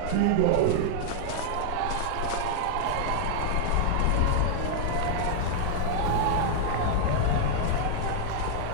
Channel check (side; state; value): both; different; correlation -0.01